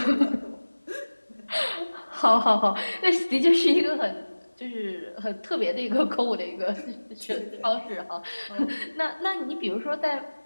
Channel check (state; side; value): inverted; both; correlation -1.00